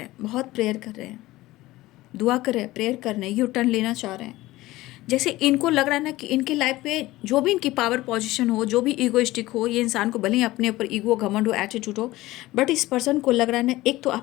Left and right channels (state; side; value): quieter; right; 17.9 dB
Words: हैं, बहुत प्रेयर कर रहे हैं, दुआ कर रहे हैं, प्रेयर कर रहे हैं, यू टर्न लेना चाह रहे हैं। जैसे इनको लग रहा है ना कि इनके लाइफ में जो भी इनकी पावर पोजीशन हो, जो भी ईगोइस्टिक हो, ये इंसान को भले ही अपने ऊपर ईगो, घमंड हो, एटीट्यूड हो, बट इस पर्सन को लग रहा है ना, एक तो